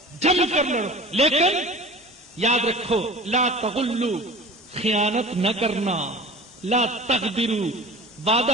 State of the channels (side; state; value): both; normal; correlation 0.39